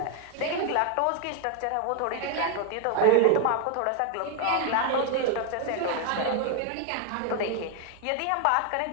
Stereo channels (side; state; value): both; different; correlation 0.00